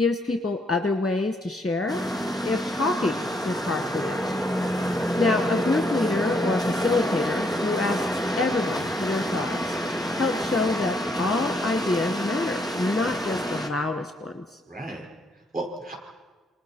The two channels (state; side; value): normal; both; correlation 0.72